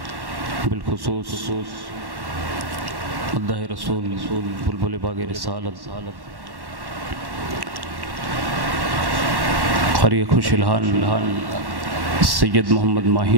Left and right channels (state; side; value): late; left; 1.1 ms